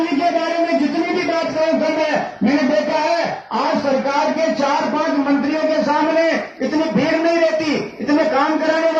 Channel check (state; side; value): identical; both; correlation 1.00